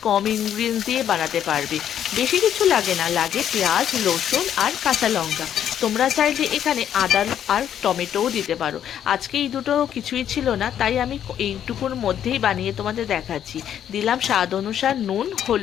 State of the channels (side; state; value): right; quieter; 9.9 dB